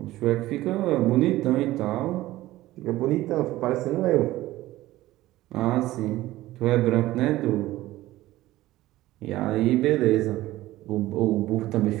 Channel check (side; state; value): left; quieter; 16.5 dB